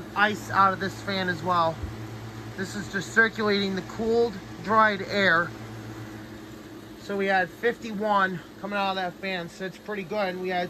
ice out of this fan as well. This is just circulating the cooled, dried air. So we had 51 coming out of that fan, so it's pretty good. We had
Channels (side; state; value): both; identical; correlation 1.00